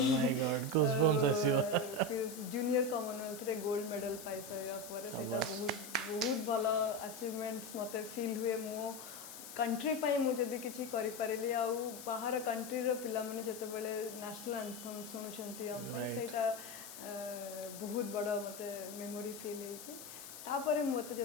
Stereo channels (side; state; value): left; noise; hiss, 12 dB below the sound